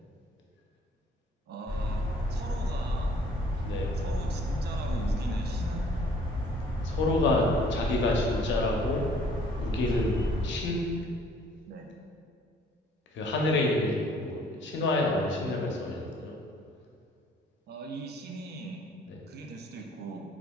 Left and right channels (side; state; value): both; normal; correlation 0.58